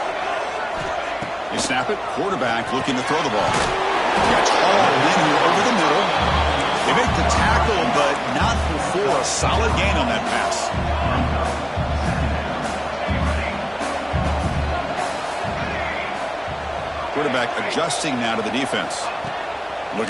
They snap it. Quarterback looking to throw the ball. Gets hauled in here over the middle. They make the tackle, but not before a solid gain on that pass. Quarterback adjusting now to the defense.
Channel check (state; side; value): identical; both; correlation 1.00